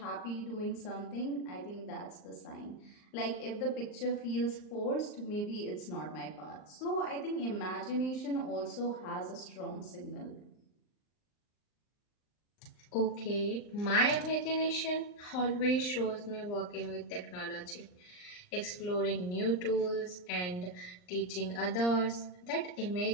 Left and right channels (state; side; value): late; right; 39 ms